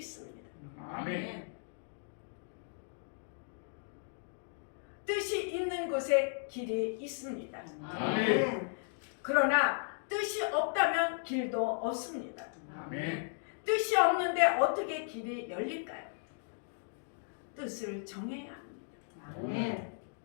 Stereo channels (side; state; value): right; silent; digital silence